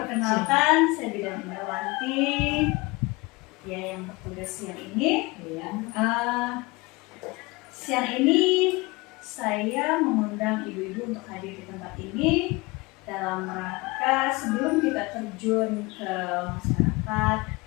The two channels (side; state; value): right; quieter; 23.9 dB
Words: saya Bidan Indrawanti. Ya, yang bertugas siang ini. Siang ini saya mengundang ibu-ibu untuk hadir di tempat ini dalam rangka sebelum kita terjun ke masyarakat